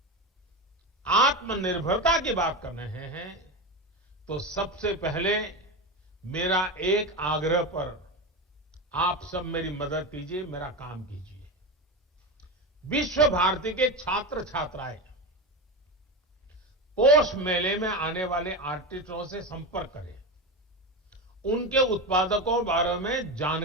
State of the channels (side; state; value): both; normal; correlation 0.19